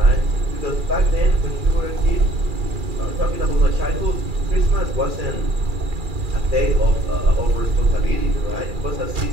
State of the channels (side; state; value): left; late; 2.4 ms